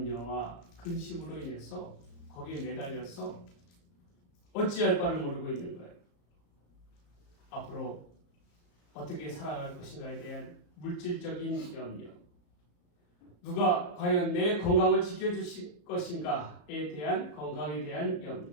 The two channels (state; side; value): late; right; 35 ms